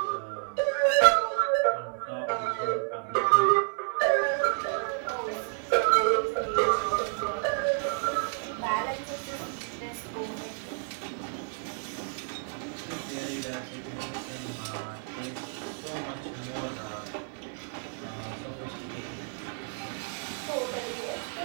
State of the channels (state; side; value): silent; left; 57 dB below the other